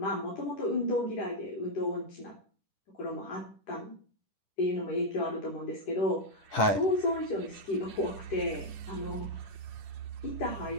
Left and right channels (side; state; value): right; late; 10 ms